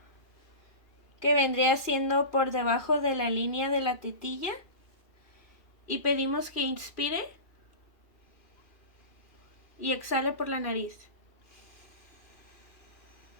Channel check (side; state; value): right; late; 2.7 ms